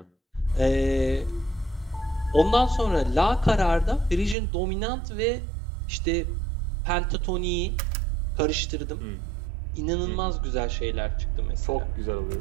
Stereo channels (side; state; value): left; drops out; at 4.4 s